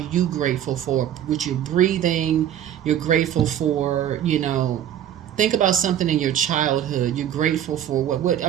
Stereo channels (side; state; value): left; quieter; 10.5 dB